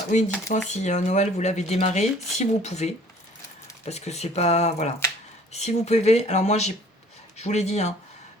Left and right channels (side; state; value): both; normal; correlation 0.54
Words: Oui, dites-moi si Noël, vous l'avez démarré, si vous pouvez. Parce que c'est pas... Voilà. Si vous pouvez... Alors moi, je vous l'ai dit, hein,